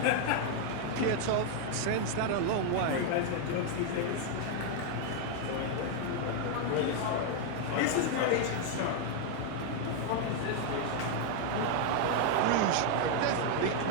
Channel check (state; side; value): different; both; correlation 0.00